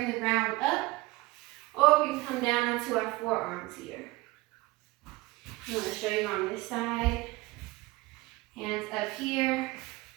the ground up, or we can come down onto our forearms here. I'm going to show you on this side. Hands up here,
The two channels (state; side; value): quieter; left; 21.2 dB